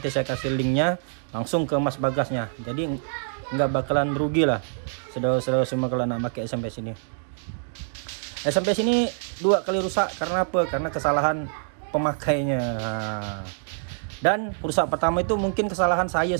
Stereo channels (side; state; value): left; silent; digital silence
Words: saya kasih linknya langsung ke Mas Bagasnya. Jadi nggak bakalan rugi lah saudara-saudara semua kalau nak pakai SMPS ini. SMPS ini 2 kali rusak karena apa? Karena kesalahan pemakainya. Dan rusak pertama itu mungkin kesalahan saya